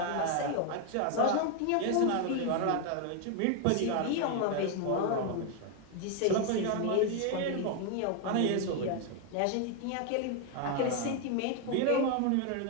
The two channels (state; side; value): different; both; correlation 0.01